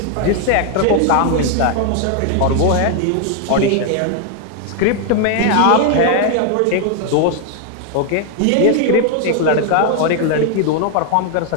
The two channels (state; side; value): different; both; correlation 0.00